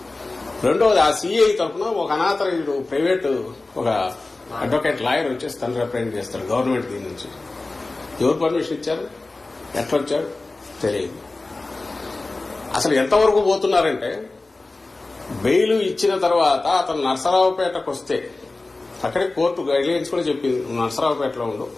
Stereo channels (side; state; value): right; quieter; 3.3 dB